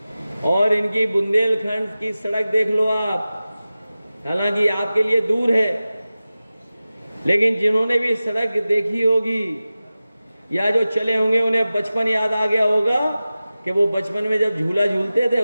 और इनकी बुंदेलखंड की सड़क देख लो आप। हालांकि आपके लिए दूर है, लेकिन जिन्होंने भी सड़क देखी होगी या जो चले होंगे उन्हें बचपन याद आ गया होगा कि वो बचपन में जब झूला झूलते थे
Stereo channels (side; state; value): both; inverted; correlation -0.95